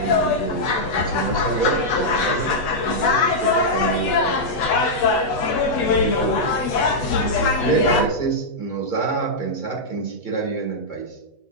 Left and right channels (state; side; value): late; right; 8.1 ms